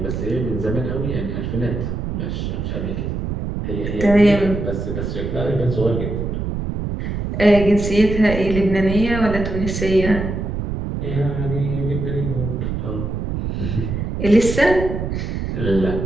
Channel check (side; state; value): right; noise; rumble, 3 dB below the sound